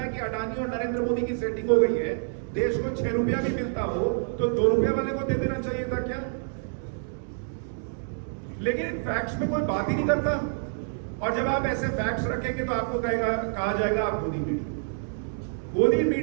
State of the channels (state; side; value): silent; left; digital silence